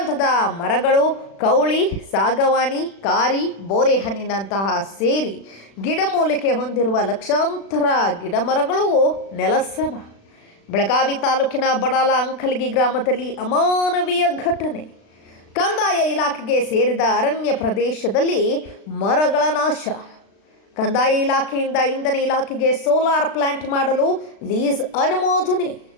ಮರಗಳು, ಕೌಳಿ, ಸಾಗವಾನಿ, ಕಾರಿ, ಬೋರೆಹಣ್ಣಿನಂತಹ ಸೇರಿ ಗಿಡಮೂಲಿಕೆ ಹೊಂದಿರುವ ಲಕ್ಷಾಂತರ ಗಿಡಮರಗಳು ನೆಲಸಮ. ಬೆಳಗಾವಿ ತಾಲೂಕಿನ ಬಡಾಲ ಅಂಕಲಗಿ ಗ್ರಾಮದಲ್ಲಿ ಅಮಾನವೀಯ ಘಟನೆ. ಕಂದಾಯ ಇಲಾಖೆಗೆ ಸೇರಿದ ಅರಣ್ಯ ಪ್ರದೇಶದಲ್ಲಿ ಮರಗಳ ನಾಶ. ಕಂದಾಯ ಇಲಾಖೆಯಿಂದ ಇಂಧನ ಇಲಾಖೆಗೆ ಸೋಲಾರ್ ಪ್ಲಾಂಟ್ ಮಾಡಲು ಲೀಸ್ ಅನುಮೋದನೆ.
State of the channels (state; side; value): late; right; 36 ms